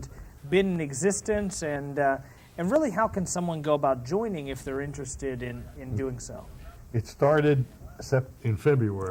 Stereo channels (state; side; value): identical; both; correlation 1.00